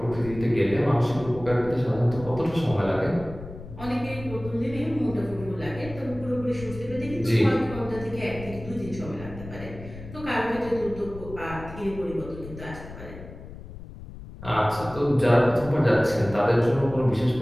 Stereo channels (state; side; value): noise; left; rumble, 14 dB below the sound